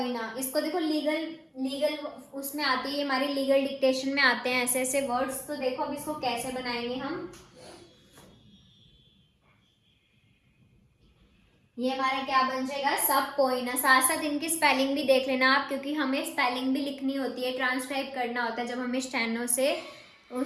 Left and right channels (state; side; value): identical; both; correlation 1.00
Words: इसको देखो लीगल लीगल उसमें आती है, हमारी लीगल डिक्टेशन में आते हैं ऐसे ऐसे वर्ड्स। तो देखो अब इसको कैसे बनाएंगे हम। ये हमारा क्या बन जाएगा, सब पोइना। साथ साथ इनकी स्पेलिंग भी देख लेना आप, क्योंकि हमें स्पेलिंग भी लिखनी होती है, ट्रांसक्राइब करना होता है जब हमें स्टेनो से